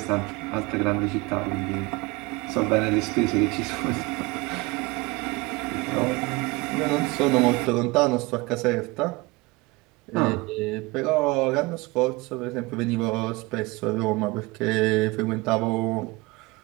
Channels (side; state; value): left; quieter; 23.5 dB